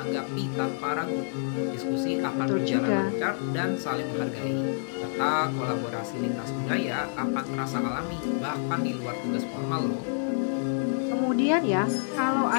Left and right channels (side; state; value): right; silent; digital silence